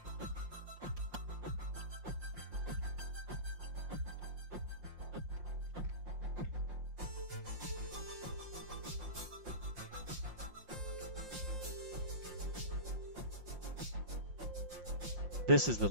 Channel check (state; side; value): late; left; 5.7 ms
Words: This is the